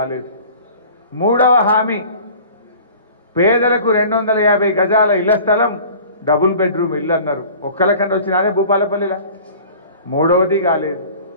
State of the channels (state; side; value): inverted; both; correlation -0.45